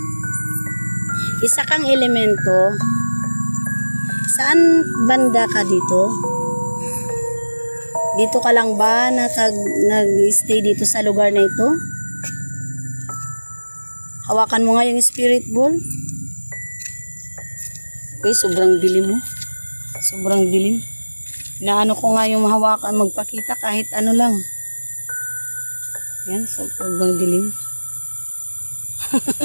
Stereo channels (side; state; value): both; inverted; correlation -1.00